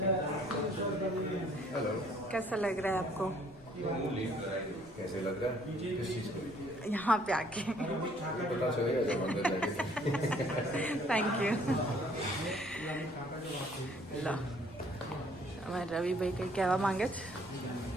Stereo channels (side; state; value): left; noise; rumble, 24 dB below the sound